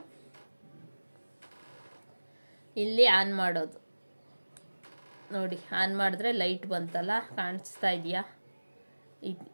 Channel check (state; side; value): inverted; both; correlation -1.00